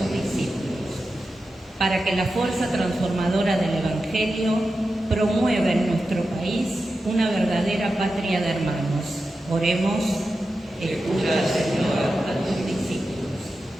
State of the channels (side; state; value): both; normal; correlation 0.91